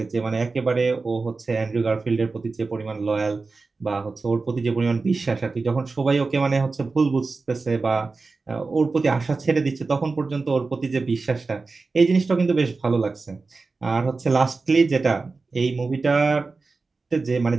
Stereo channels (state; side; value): quieter; left; 4.0 dB